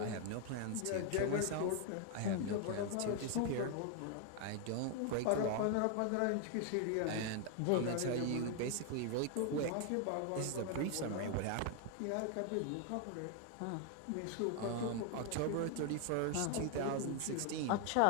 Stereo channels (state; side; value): different; both; correlation 0.00